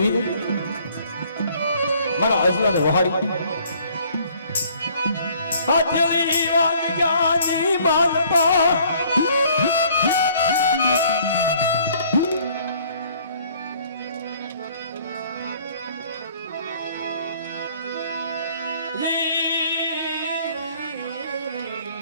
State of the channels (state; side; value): inverted; both; correlation -0.58